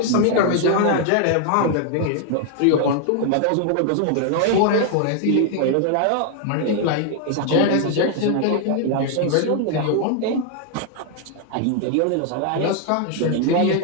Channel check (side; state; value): both; different; correlation 0.00